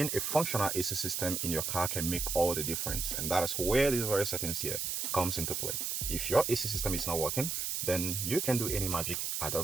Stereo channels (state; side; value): noise; right; hiss, 1 dB below the sound